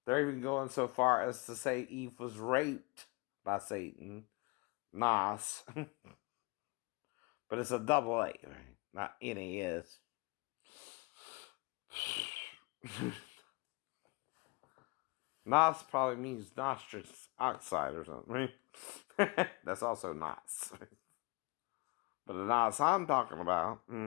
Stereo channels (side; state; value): right; quieter; 27.4 dB